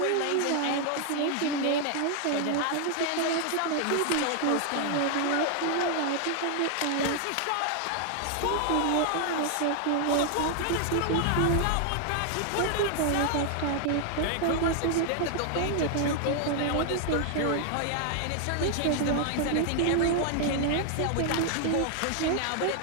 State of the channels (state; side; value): different; both; correlation 0.00